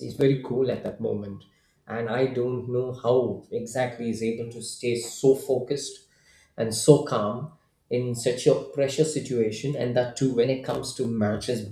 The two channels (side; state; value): both; identical; correlation 1.00